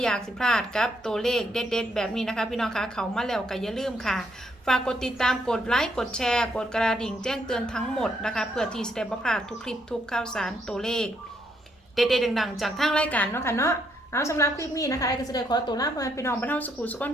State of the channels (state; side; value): normal; both; correlation 0.74